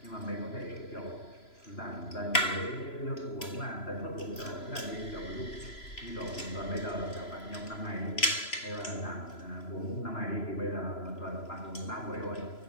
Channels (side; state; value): right; late; 3.0 ms